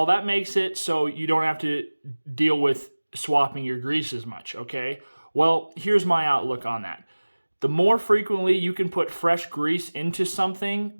that makes it so you don't have to deal with swapping your grease as much. Okay, well, here's my outlook on that. The more frequently you can put fresh grease into something,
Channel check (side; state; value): both; inverted; correlation -1.00